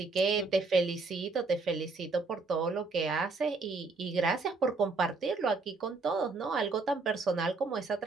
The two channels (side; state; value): left; quieter; 3.8 dB